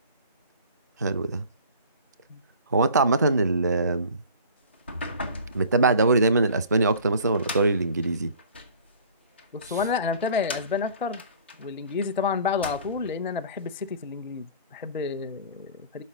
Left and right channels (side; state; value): both; inverted; correlation -0.47